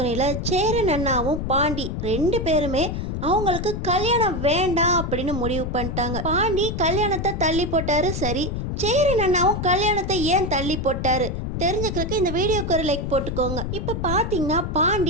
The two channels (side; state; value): left; noise; rumble, 4 dB below the sound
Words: சேரன் அண்ணாவும் பாண்டி ரெண்டு பேருமே அவங்களுக்கு கல்யாணம் வேண்டாம் அப்படின்னு முடிவு பண்ணிட்டாங்க. பாண்டி கல்யாணத்தை தள்ளி போட்டாரு. சரி, சேரன் அண்ணாவும் கல்யாணத்தை ஏன் தள்ளி போட்டாரு தெரிஞ்சுக்கிறதுக்கு இந்த வீடியோக்கு ஒரு லைக் போட்டுக்கோங்க. இப்போ பார்த்தீங்கன்னா